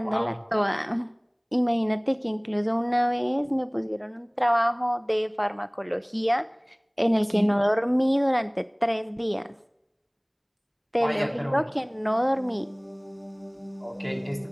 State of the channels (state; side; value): identical; both; correlation 1.00